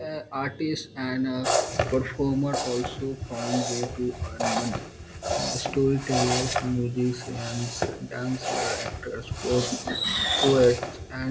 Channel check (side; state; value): both; identical; correlation 1.00